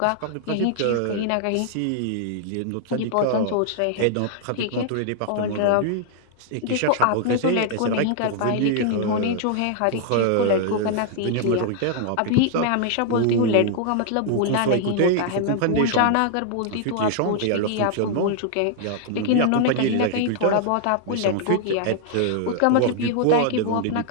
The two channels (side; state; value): both; different; correlation -0.01